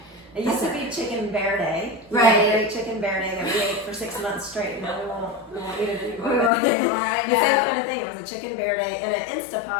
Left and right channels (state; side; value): drops out; right; at 6.5 s